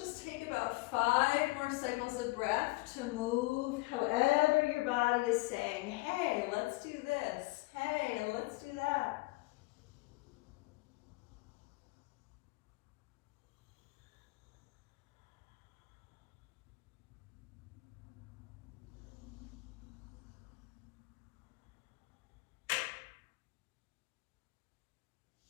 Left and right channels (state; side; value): quieter; right; 23.3 dB